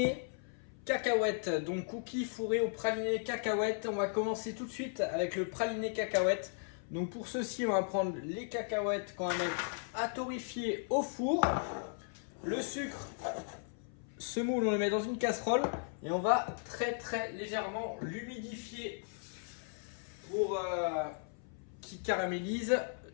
cacahuètes. Donc cookies fourrés au praliné cacahuètes. On va commencer tout de suite avec le praliné cacahuètes. Donc pour ceci on va prendre les cacahuètes qu'on va mettre à torréfier au four. Le sucre, ce moule on le met dans une casserole et on va très légèrement l'humidifier pour qu'il caramélise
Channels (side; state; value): right; silent; 54 dB below the other